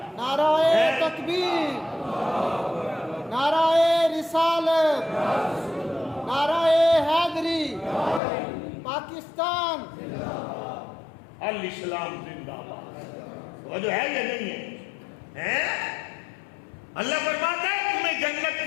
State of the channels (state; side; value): drops out; right; at 8.2 s